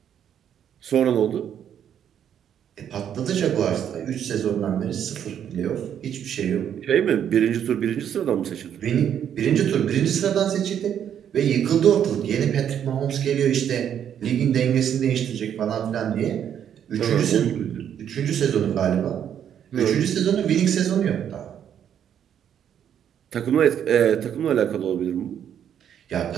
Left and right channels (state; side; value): quieter; left; 9.3 dB